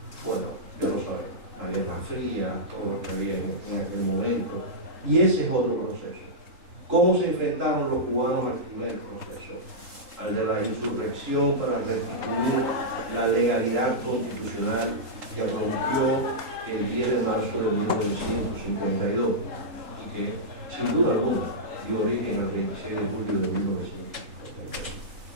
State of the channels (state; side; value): late; left; 3.8 ms